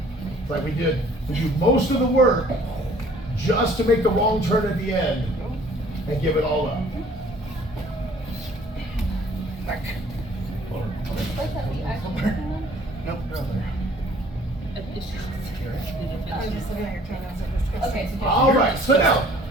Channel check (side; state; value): both; normal; correlation 0.55